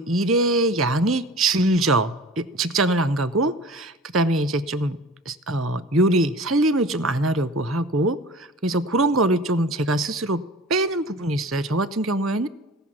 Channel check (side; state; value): both; normal; correlation 0.41